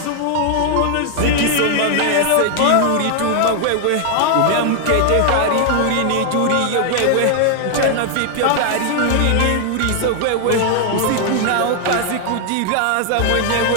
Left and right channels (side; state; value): both; different; correlation 0.00